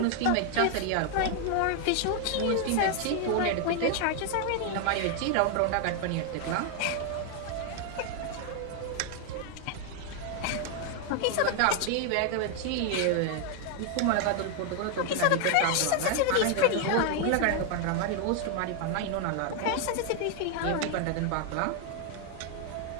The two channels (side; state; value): both; different; correlation 0.00